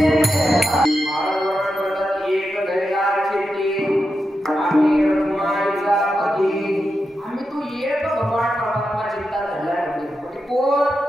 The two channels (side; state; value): both; normal; correlation 0.88